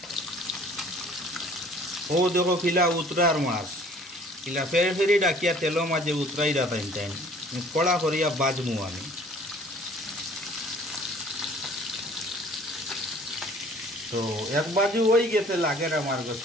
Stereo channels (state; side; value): normal; both; correlation 0.53